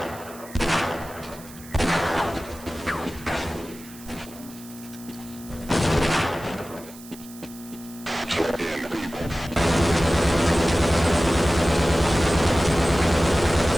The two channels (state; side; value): noise; right; hiss, 19 dB below the sound